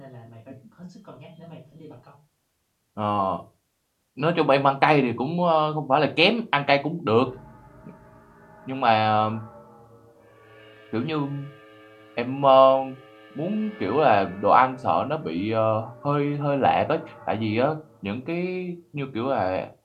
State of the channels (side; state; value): both; identical; correlation 1.00